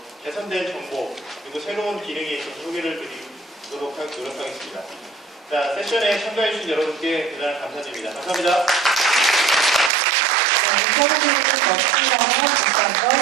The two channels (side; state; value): left; drops out; at 9.9 s